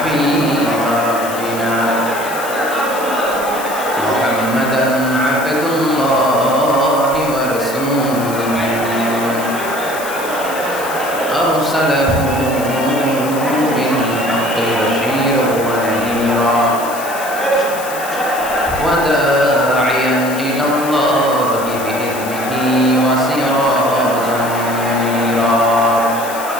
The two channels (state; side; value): noise; left; hiss, 12 dB below the sound